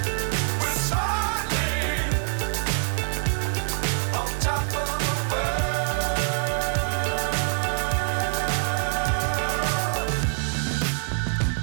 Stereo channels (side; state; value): left; silent; digital silence